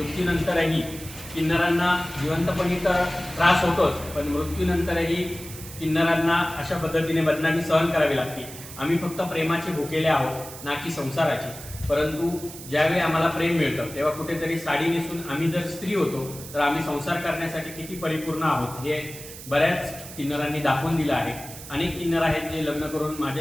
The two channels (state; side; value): noise; right; hiss, 14 dB below the sound